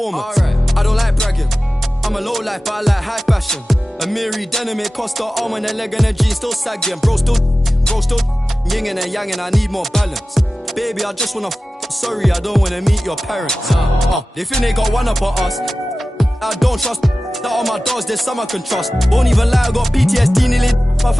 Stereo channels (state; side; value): normal; both; correlation 0.95